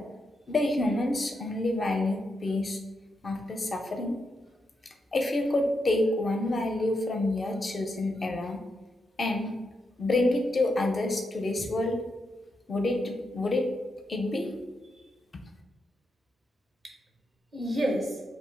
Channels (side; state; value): both; normal; correlation 0.84